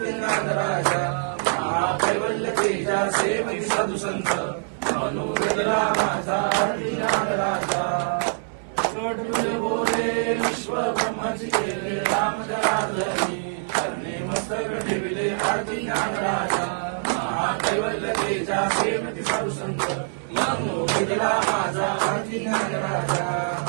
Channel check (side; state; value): left; silent; 62 dB below the other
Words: नागराजा कैवल्य तेजा सेवक साधू संत वेदला माझा आरती नागराजा बोले विश्व ब्रह्माची केले राम जनार्दनी मस्तक ठेविले आरती नागराजा कैवल्य तेजा सेवक साधू संत वेदला माझा आरती नागराजा